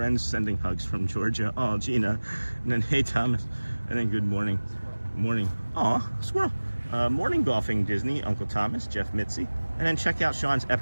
Sending hugs from Georgia. Oh, Gina. And then hey, Thomas. And then good morning. Morning. Aw, squirrel. Morning golfing Disney, Uncle Thomas, Jeff Mitzi. And then check out Sean's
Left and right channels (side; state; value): both; inverted; correlation -1.00